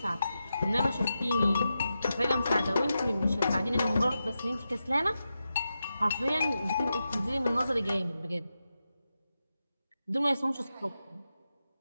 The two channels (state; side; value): inverted; both; correlation -0.90